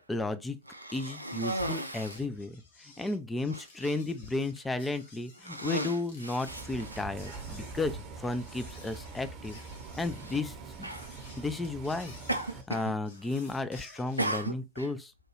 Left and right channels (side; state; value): both; normal; correlation 0.44